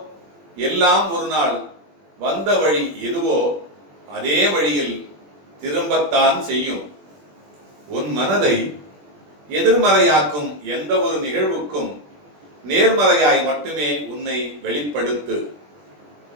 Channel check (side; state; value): left; late; 21 ms